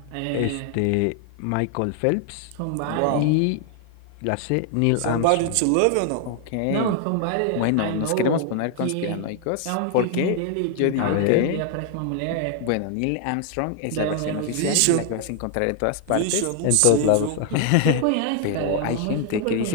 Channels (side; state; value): both; different; correlation 0.00